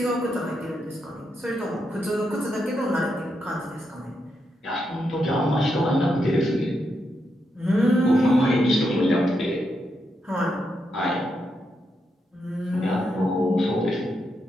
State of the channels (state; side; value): normal; both; correlation 0.83